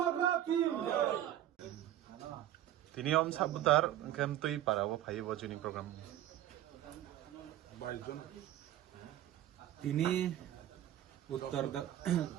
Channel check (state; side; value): quieter; left; 12.6 dB